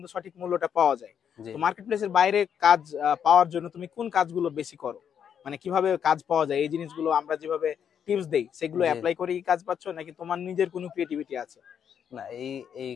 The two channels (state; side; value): quieter; right; 8.2 dB